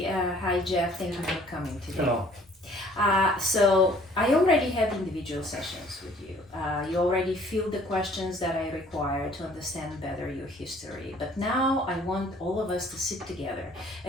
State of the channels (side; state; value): both; normal; correlation 0.56